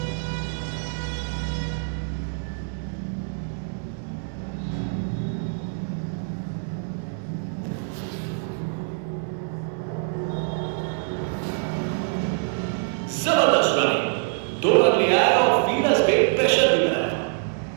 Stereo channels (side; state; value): left; silent; 62 dB below the other